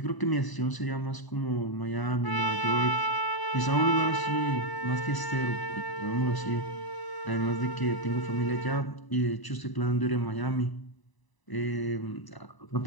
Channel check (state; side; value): late; right; 1.0 ms